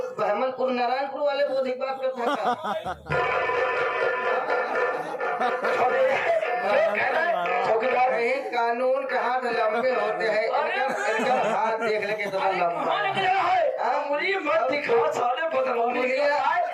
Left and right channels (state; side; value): identical; both; correlation 1.00